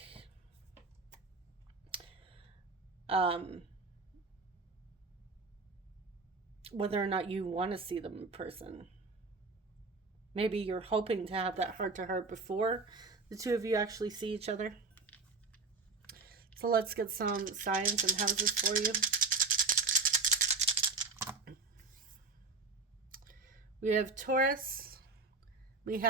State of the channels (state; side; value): quieter; left; 4.2 dB